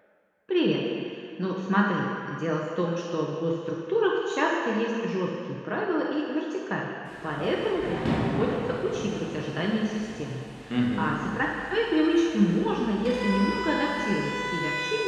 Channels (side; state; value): both; identical; correlation 1.00